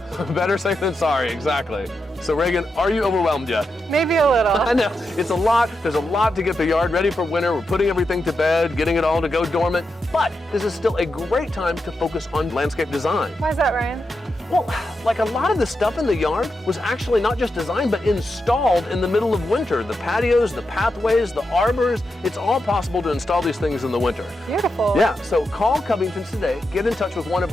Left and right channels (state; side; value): normal; both; correlation 0.87